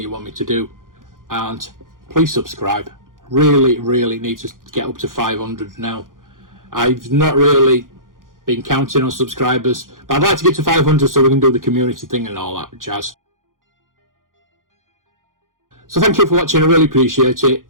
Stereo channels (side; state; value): left; late; 0.90 ms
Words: want me to do, and please subscribe. Really need to get up to 500 now. I've not really been counting on subscribers, but I'd like to get to 500 so we can do the community thing and all that jazz. So thank you for watching. I really appreciate it,